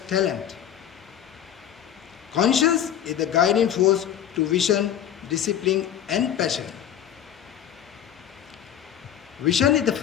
talent. Conscience is the guiding force to vision, discipline, and passion. Vision is the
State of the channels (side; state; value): right; quieter; 10.0 dB